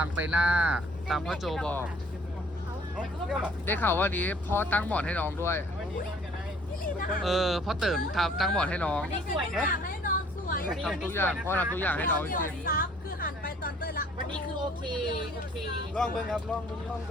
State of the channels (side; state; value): both; normal; correlation 0.57